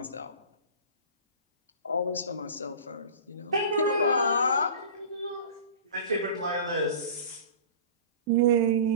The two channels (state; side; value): inverted; both; correlation -0.38